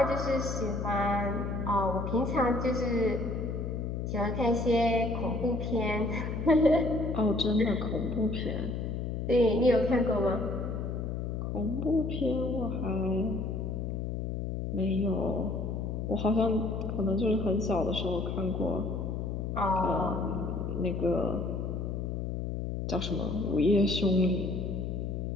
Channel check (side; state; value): left; noise; hum, 3 dB below the sound